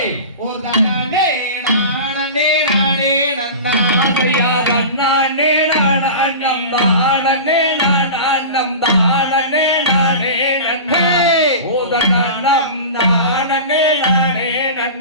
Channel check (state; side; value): inverted; both; correlation -0.32